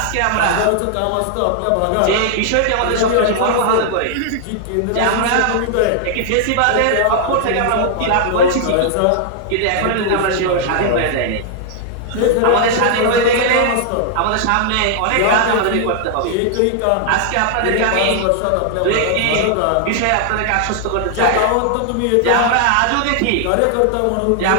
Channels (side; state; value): both; different; correlation 0.00